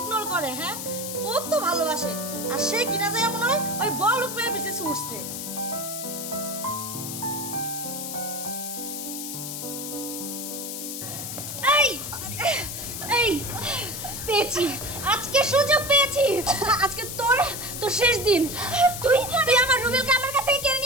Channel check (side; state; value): left; noise; hiss, 6 dB below the sound